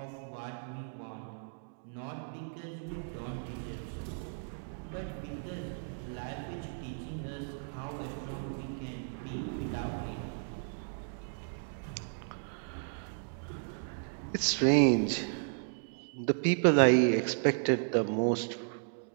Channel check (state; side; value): silent; left; digital silence